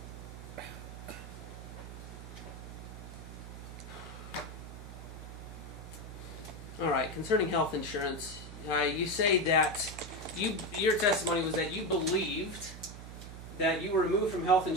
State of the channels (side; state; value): right; noise; hum, 11 dB below the sound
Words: All right, concerning health insurance, you say that your testimony was that you believed that you were removed from health